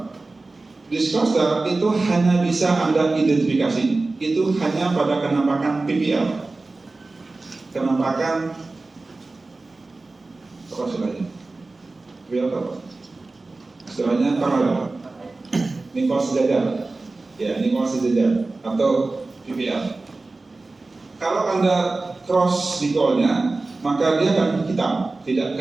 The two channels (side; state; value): left; quieter; 3.4 dB